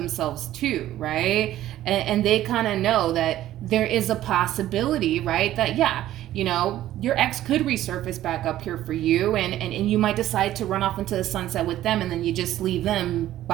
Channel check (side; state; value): left; quieter; 13.5 dB